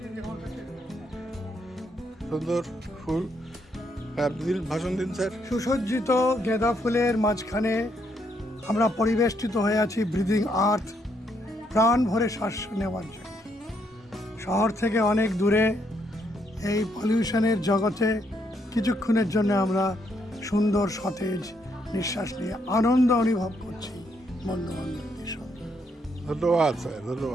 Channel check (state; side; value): normal; both; correlation 0.74